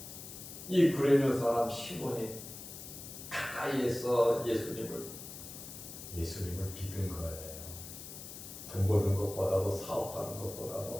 이 구레뇨 사람 시몬이 가까이에서 예수님을 믿은 거예요. 돈 버는 것보다도 사업하는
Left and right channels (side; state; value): left; noise; hiss, 12 dB below the sound